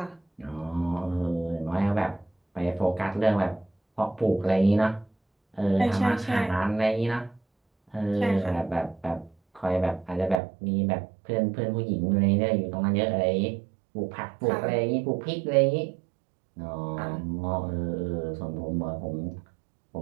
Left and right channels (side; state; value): left; drops out; at 10.4 s